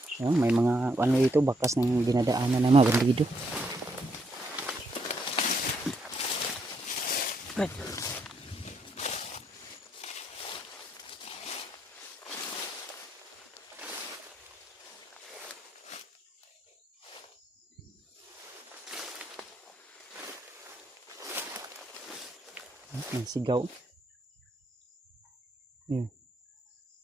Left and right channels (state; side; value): normal; both; correlation 0.75